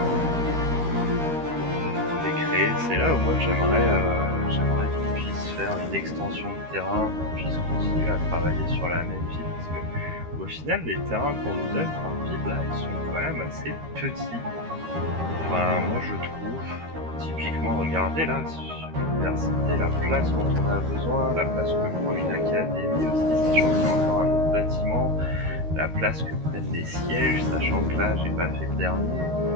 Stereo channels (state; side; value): late; left; 13 ms